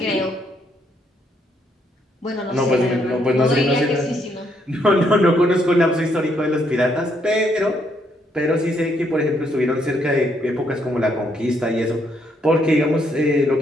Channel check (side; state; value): both; normal; correlation 0.73